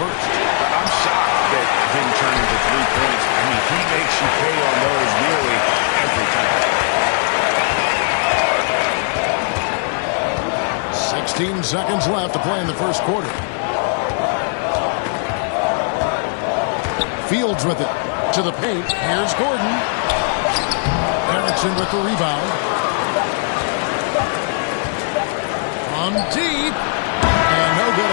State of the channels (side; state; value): right; silent; 60 dB below the other